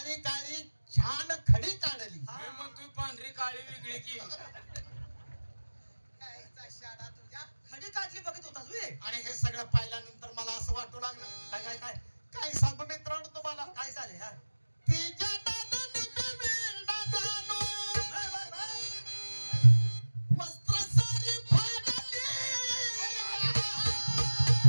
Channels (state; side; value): inverted; both; correlation -1.00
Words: काळी छान खडी काढली हा. मी म्हणतोय पांढरी काळी वेगळी की खडी काढली बघत होतास वे आणि हे सगळं पाहिल्यानंतर मला असं वाटू लागलं काय काय काय काय सांगू मित्रांनो तुम्हाला काय झालंय हा तिच्या दादाने मी वेडा झालो. Bye, bye, bye. वस्त्र सारी फाडली.